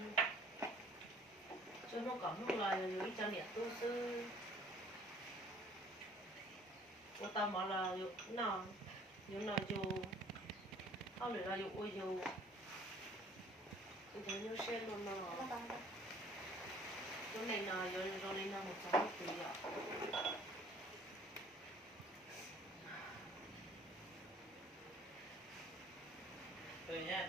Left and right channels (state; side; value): normal; both; correlation 0.54